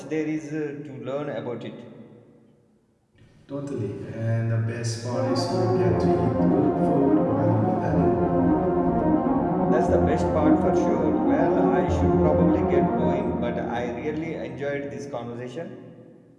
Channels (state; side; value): identical; both; correlation 1.00